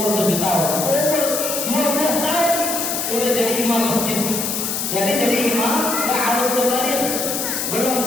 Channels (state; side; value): noise; left; hiss, 2 dB below the sound